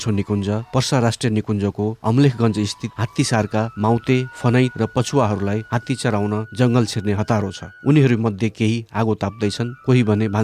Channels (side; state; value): both; identical; correlation 1.00